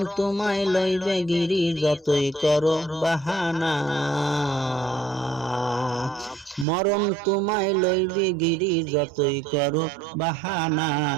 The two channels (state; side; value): drops out; left; at 6.7 s